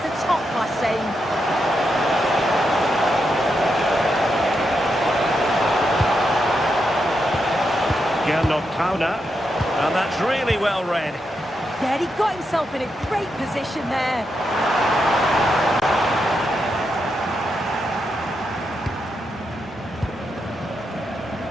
a top-class save. Counter, and that's really well read. Yeah, he got himself in a great position there.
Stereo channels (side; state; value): both; normal; correlation 0.84